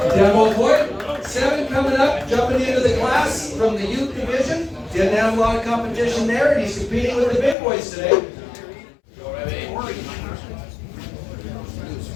Dan Malfoy, 7 coming up, jumping into the class from the youth division. Didn't have a lot of competition there, and he's competing with the big boys today.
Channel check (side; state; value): right; drops out; at 7.6 s